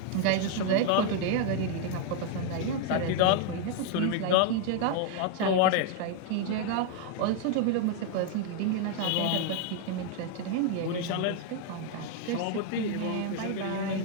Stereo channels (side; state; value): both; different; correlation 0.00